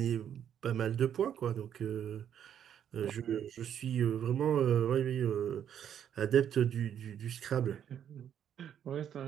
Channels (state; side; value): quieter; left; 9.3 dB